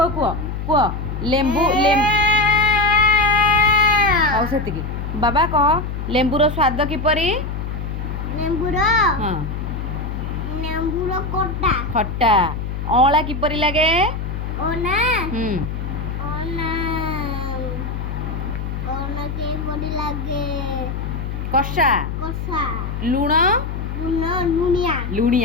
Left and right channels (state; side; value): noise; left; hum, 5 dB below the sound